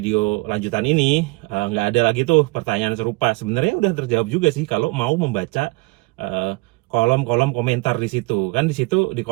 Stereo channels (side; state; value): left; quieter; 24.7 dB